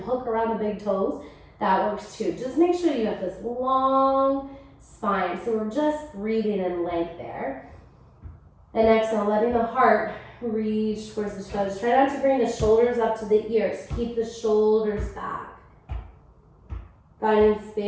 around the big toes. That works too. Just make sure you have this long spine. So we're just breathing in length there. And exhale, letting the heart reach towards the shoulders. Try not to bring the shoulders up to the ears. Keep the shoulders back. Finding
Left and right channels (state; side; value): identical; both; correlation 1.00